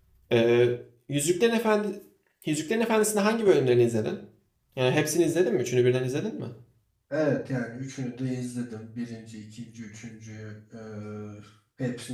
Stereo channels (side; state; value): both; identical; correlation 1.00